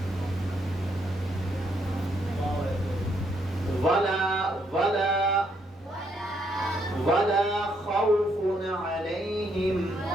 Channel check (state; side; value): normal; both; correlation 0.74